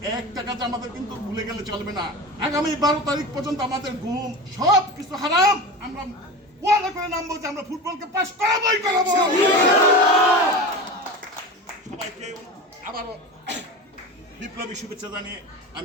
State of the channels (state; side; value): normal; both; correlation 0.29